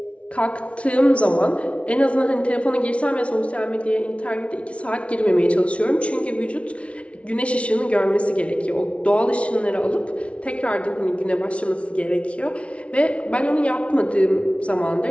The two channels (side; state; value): right; late; 0.062 ms